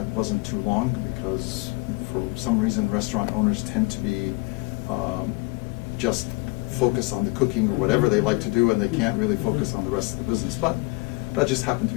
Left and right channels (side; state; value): right; quieter; 26.1 dB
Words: wasn't too long because for some reason restaurant owners tend to be just focused on the cooking or whatever they like to do, and they can't really focus on the rest of the business. But that just happened to